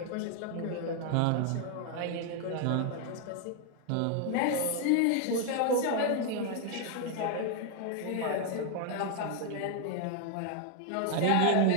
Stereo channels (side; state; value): both; different; correlation 0.00